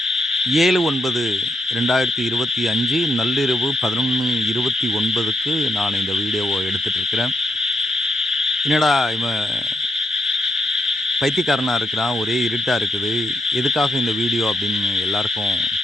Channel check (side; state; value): both; normal; correlation 0.80